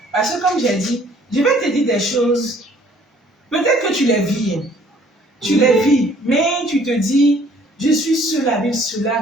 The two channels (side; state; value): both; normal; correlation 0.58